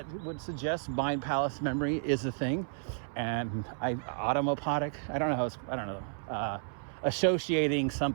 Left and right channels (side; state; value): left; silent; 56 dB below the other